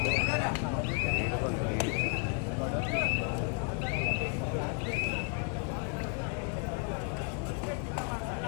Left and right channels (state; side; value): quieter; right; 38.1 dB